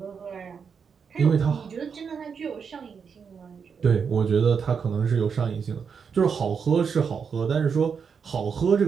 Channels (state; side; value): quieter; left; 6.3 dB